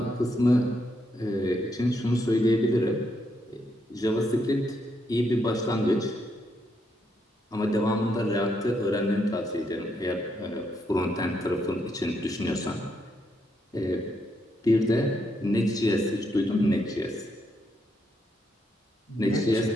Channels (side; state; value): both; normal; correlation 0.78